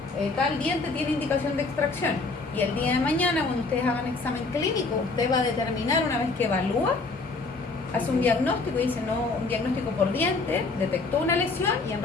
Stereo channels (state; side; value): quieter; right; 3.8 dB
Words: tal diente tiene indicación de extracción. Y el día de mañana, cuando ustedes hagan examen clínico, usted va a determinar, una vez que evalúa, hace un diagnóstico y dice, no, un diagnóstico por diente, detectó una lesión y en